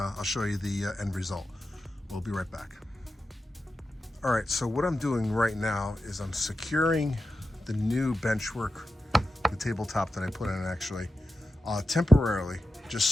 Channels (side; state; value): both; normal; correlation 0.91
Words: show you the end result. We'll be right back. All right, so what I'm doing right now is I'm securing the new benchwork, the tabletop that I put in actually, temporarily, just